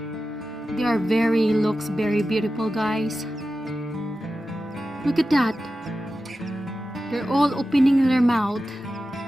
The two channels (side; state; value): both; normal; correlation 0.93